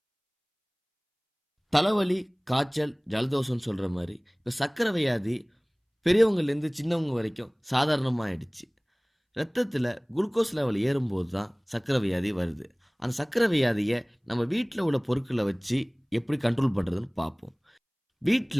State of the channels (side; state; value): both; identical; correlation 1.00